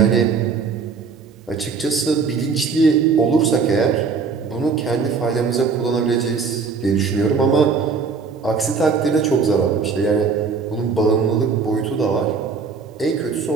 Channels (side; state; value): left; quieter; 5.2 dB